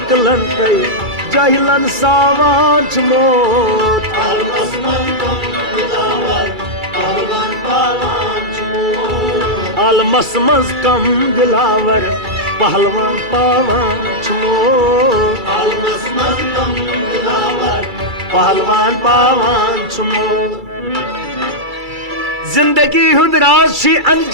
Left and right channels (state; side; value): late; left; 2.3 ms